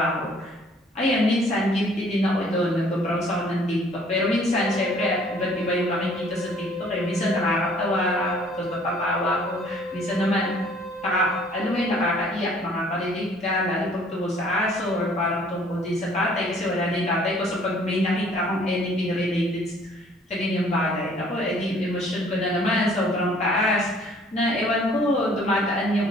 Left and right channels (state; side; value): normal; both; correlation 0.57